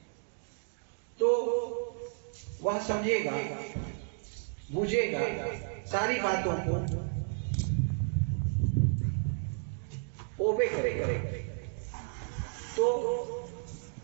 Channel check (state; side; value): silent; left; digital silence